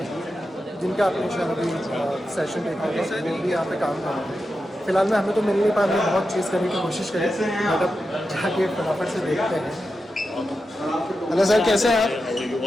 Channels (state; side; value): normal; both; correlation 0.90